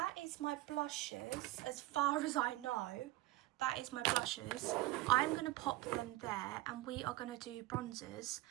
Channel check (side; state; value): left; quieter; 17.7 dB